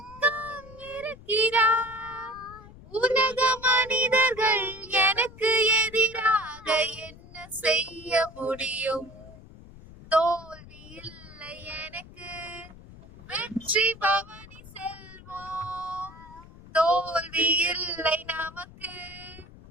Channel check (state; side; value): noise; left; rumble, 19 dB below the sound